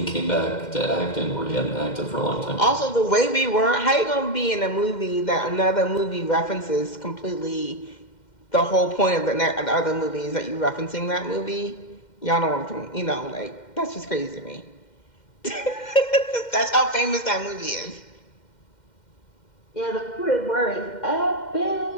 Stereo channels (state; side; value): late; right; 2.1 ms